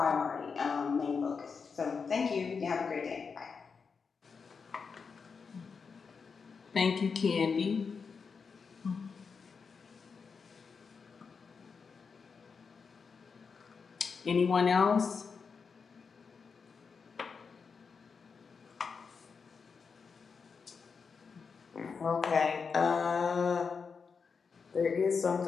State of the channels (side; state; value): right; quieter; 5.5 dB